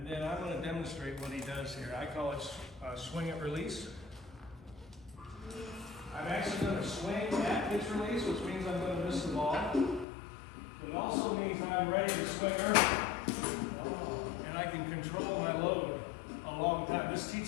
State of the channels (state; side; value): drops out; right; at 10.1 s